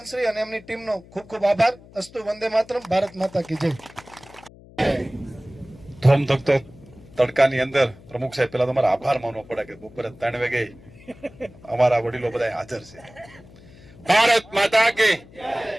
અને એમની ટીમનો ખૂબ ખૂબ આભાર. અસ્તુ વંદે માતરમ. ભારત માતા કી જય. ધોમધખતો તડકાની અંદર પ્રમુખ સાહેબ પેલા તમારા આભાર માનવો પડે કે બપોરે 3 વાગે અમારા વડીલો બધા હાજર છે. ભારત માતા કે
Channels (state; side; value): noise; left; hum, 22 dB below the sound